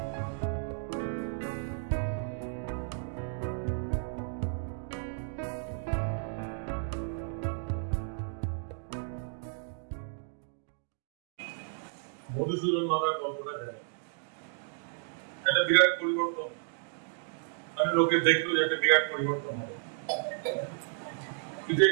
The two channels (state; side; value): silent; left; digital silence